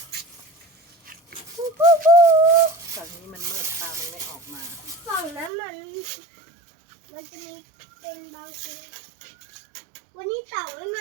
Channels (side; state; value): left; drops out; at 5.5 s